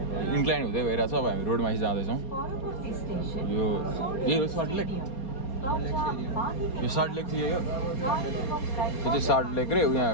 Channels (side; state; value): right; late; 4.3 ms